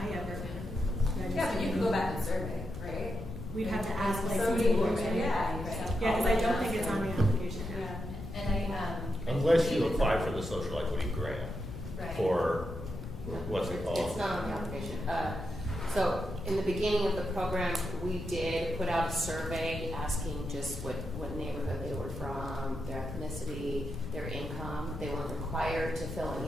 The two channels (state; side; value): noise; left; rumble, 9 dB below the sound